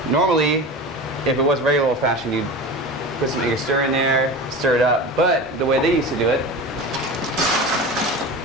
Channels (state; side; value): normal; both; correlation 0.31